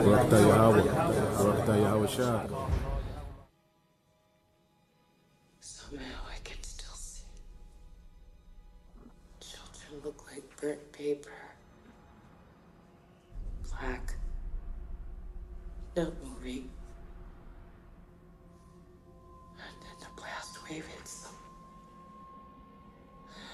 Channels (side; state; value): both; identical; correlation 1.00